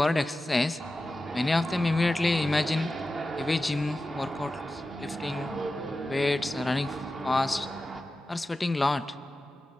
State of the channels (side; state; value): both; normal; correlation 0.93